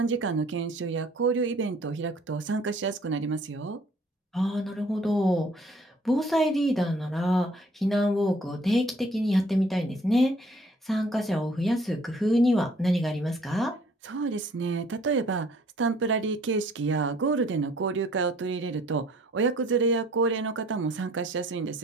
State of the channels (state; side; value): normal; both; correlation 0.58